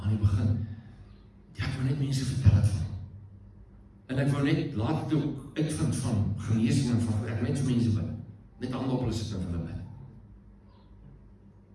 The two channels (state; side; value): identical; both; correlation 1.00